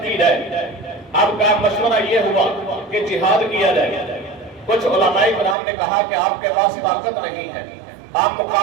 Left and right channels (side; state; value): left; drops out; at 5.6 s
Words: کی جائے۔ اب کا مشورہ یہ ہوا کہ جہاد کیا جائے۔ کچھ علماء کرام نے کہا کہ آپ کے پاس طاقت نہیں ہے، آپ